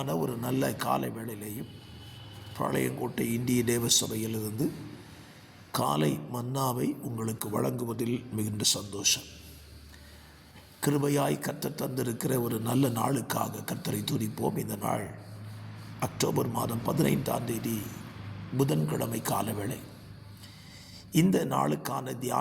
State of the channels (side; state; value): both; identical; correlation 1.00